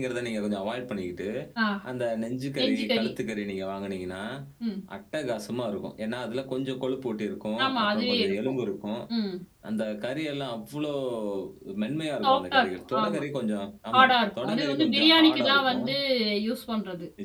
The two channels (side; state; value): both; identical; correlation 1.00